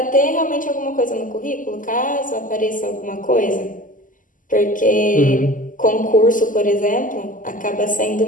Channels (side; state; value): right; late; 0.38 ms